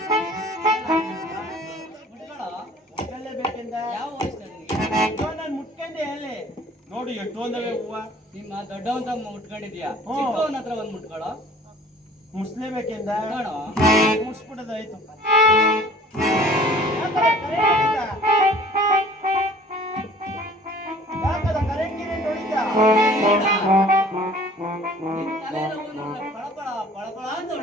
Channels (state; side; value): normal; both; correlation 0.50